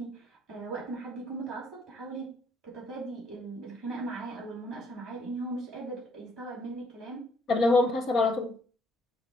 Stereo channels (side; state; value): both; normal; correlation 0.68